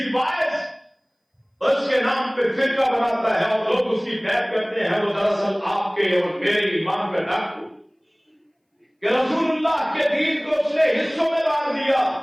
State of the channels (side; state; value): both; identical; correlation 1.00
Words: واعظ اس کے نام پہ فرقہ بناتا ہے اور لوگ اس کی بیعت کرتے ہیں، وہ دراصل آپ کے اور میرے ایمان کا ڈاکو کہ رسول اللہ کے دین کو اس نے حصوں میں بانٹ دیا۔